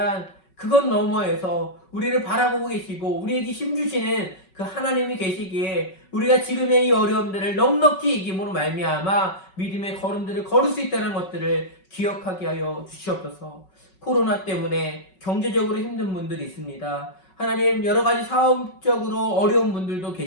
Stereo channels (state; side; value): late; right; 5.3 ms